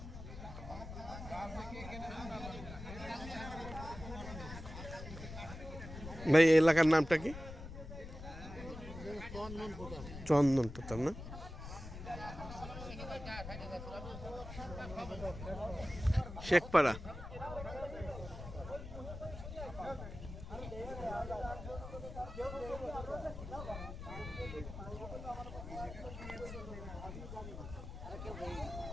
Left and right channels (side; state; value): left; noise; rumble, 10 dB below the sound